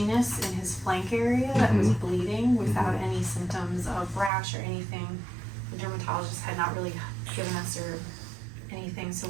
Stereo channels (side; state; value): left; drops out; at 4.3 s